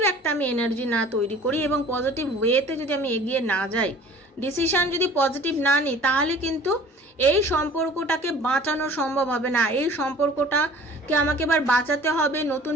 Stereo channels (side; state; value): both; normal; correlation 0.48